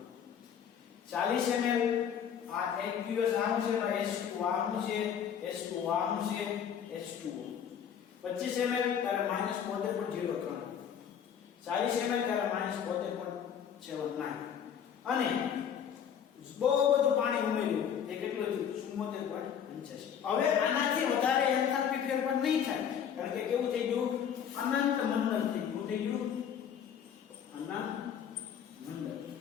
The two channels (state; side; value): quieter; right; 8.3 dB